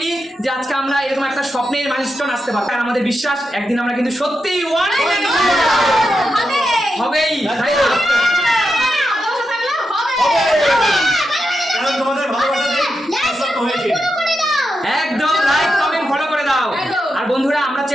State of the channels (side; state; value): both; normal; correlation 0.87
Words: যে আজকে আমরা এরকম একটা স্বপ্নের মাইলস্টোন আসতে পারবো। আর আমাদের বিশ্বাস একদিন আমরা কিন্তু সত্যিই হবেই, তাই না? তোমাদের ভালোবাসা হয়েছে, একদম লাইক কমেন্ট ফলো করে দাও। আর বন্ধুরা, আমরা